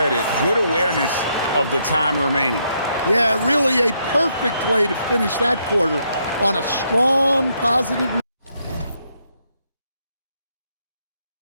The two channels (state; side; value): inverted; both; correlation -0.75